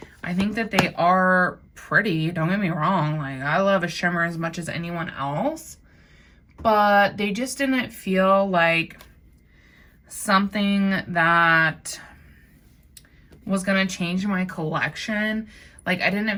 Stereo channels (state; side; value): identical; both; correlation 1.00